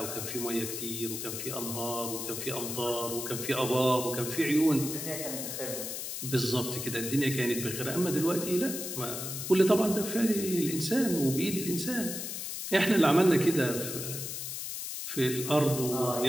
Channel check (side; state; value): left; noise; hiss, 5 dB below the sound